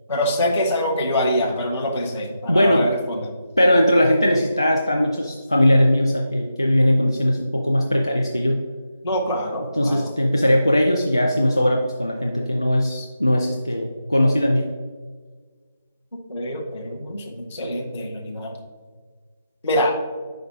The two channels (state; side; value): inverted; both; correlation -0.87